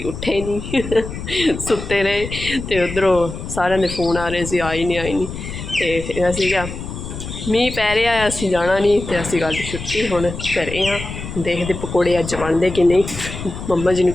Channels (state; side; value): noise; left; rumble, 9 dB below the sound